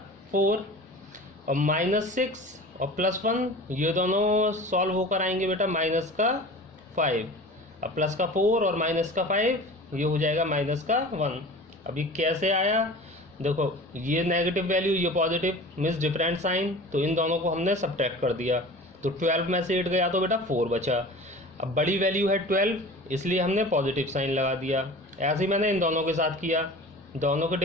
4 और -6 और प्लस 1 ये दोनों सॉल्व होकर आएंगे बेटा माइनस का 5। अब प्लस का 4 और माइनस का 5 ये हो जाएगा माइनस का 1। अभी कैसे आया देखो, ये नेगेटिव वैल्यू ये पॉजिटिव मीन्स डिफरेंट साइन, तो इन दोनों को हमने सब्ट्रैक्ट कर दिया, तो तो 12 में से 8 गया तो बेटा 4 बचा। अब बड़ी वैल्यू है 12, इसलिए हमने पॉजिटिव साइन लगा दिया। ऐसे ही मैंने इन दोनों के साथ किया, दोनों के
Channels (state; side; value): normal; both; correlation 0.39